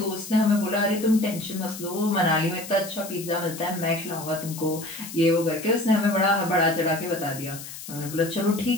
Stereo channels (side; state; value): left; noise; hiss, 12 dB below the sound